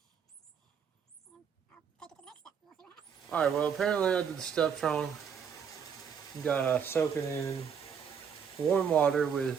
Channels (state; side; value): quieter; left; 7.1 dB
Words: And I'll take it to the next step. We'll see what happens. Alright, well apparently I did the stuff wrong. You gotta soak it in warm water